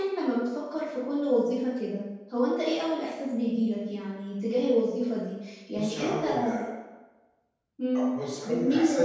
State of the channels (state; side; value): identical; both; correlation 1.00